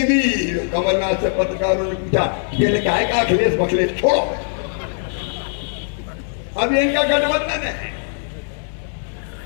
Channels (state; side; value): silent; right; digital silence